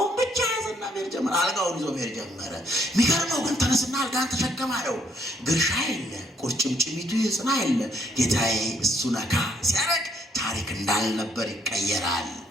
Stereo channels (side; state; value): both; normal; correlation 0.69